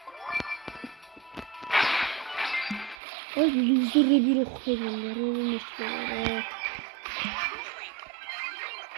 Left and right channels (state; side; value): drops out; left; at 3.0 s